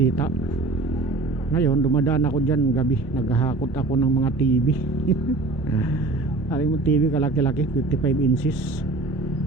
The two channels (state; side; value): quieter; left; 3.4 dB